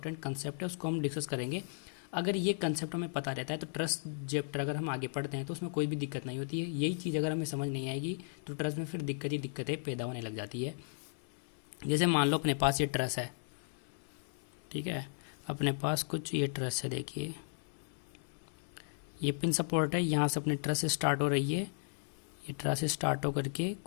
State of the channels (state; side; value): silent; right; digital silence